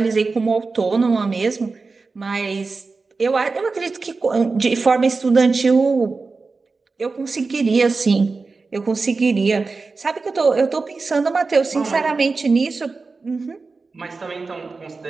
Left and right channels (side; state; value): left; quieter; 4.1 dB